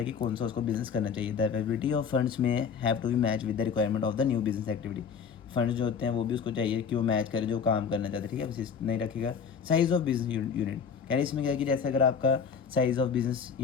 कि कौन सा उसको बिजनेस करना चाहिए। The availability of funds may have to be match with the requirement of the new business activity, funds जो होते हैं वो भी उसको चाहिए कि वो मैच करे जो काम करना चाहते हैं, ठीक है, बस नहीं रखेगा। साइज ऑफ बिजनेस यूनिट, कह रहे इसमें क्या है कि जैसे अगर आपका साइज ऑफ बिजनेस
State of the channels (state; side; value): quieter; right; 6.5 dB